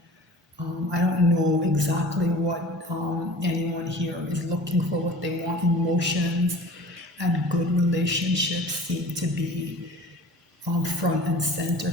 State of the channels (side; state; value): both; normal; correlation 0.42